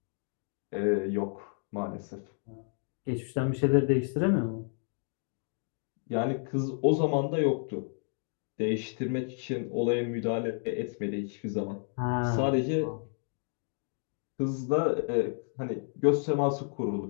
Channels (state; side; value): silent; right; 57 dB below the other